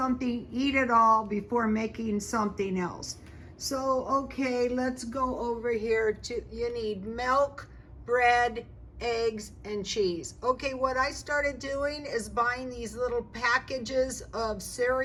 eat it all before making something else. So, okay, let's go over here to, you need milk, bread, eggs, and cheese. Okay, what I started doing is buying these little packages of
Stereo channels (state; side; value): identical; both; correlation 1.00